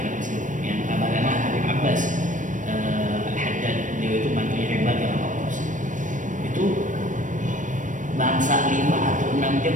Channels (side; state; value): left; late; 0.37 ms